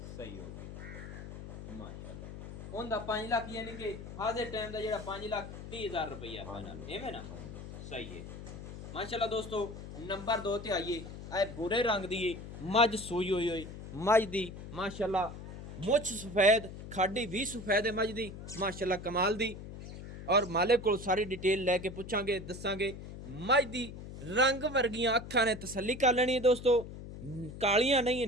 सही हो गई माशाल्लाह। उनदा 5 लाख यानी कि हाजिर टाइम दा जेड़ा 5,30,000 रुपया फाइनल एवें ना ਸਹੀ ਹੈ ਮਾਸ਼ਾਅੱਲਾ ਦੋਸਤੋ। ਨੰਬਰ 2 ਤੇ ਆਈਏ, ਇਹ ਬੁਰੇ ਰੰਗ ਦੀ ਏ ਮੱਝ ਸੂਈ ਹੋਈ ਮੱਝ ਦੀ ਮਾਸ਼ਾਅੱਲਾ ਮੁੱਛ ਸਫੈਦ, ਖਾਡੀ ਵੀ ਸਫੈਦ ਹੈ ਮੱਝ ਦੀ ਮਾਸ਼ਾਅੱਲਾ ਕਮਾਲ ਦੀ। ਔਰ ਮਾਲਿਕ ਕੋਲ ਸਾਰੀ ਡਿਟੇਲ ਲੈ ਕੇ ਪੁੱਛਾਂਗੇ ਦੱਸਾਂਗੇ। ਮੱਝ ਦੀ ਰੰਗ ਵਰਗੀਆਂ ਅੱਖਾਂ ਨੇ ਤਸੱਲੀ ਕਰ ਲੈਣੀ ਹੈ ਦੋਸਤੋ, ਕਾਲੀਆਂ ਨਹੀਂ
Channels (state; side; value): noise; left; hum, 11 dB below the sound